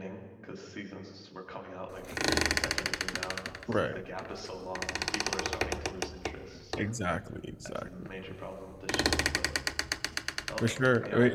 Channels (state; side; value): identical; both; correlation 1.00